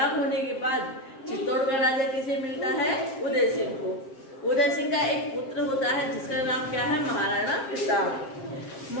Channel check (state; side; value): late; right; 7.5 ms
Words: होने के बाद चित्तौड़ का राजा किसे मिलता है? उदय सिंह को। उदय सिंह का एक पुत्र होता है जिसका नाम क्या है? महाराणा प्रताप।